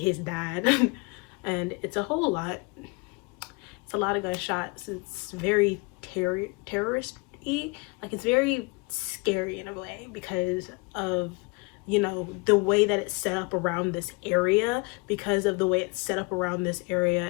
dad. And it's a whole lot. It's a lot of gunshots. It's very terrorist-y. Like, it's very scary in a way because of, you know, the way that it's set up around this area, because of the way it's set up around this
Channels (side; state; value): right; quieter; 29.1 dB